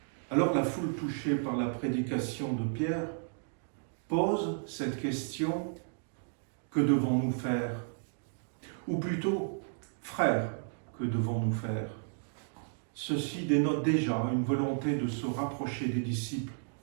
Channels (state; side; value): silent; left; digital silence